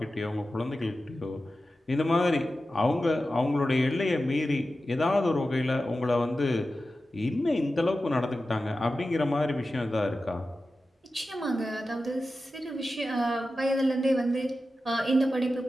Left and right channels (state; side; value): normal; both; correlation 0.93